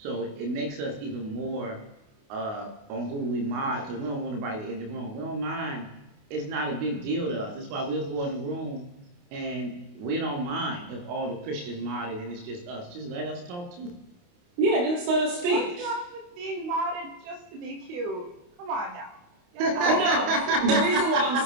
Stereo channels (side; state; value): left; late; 28 ms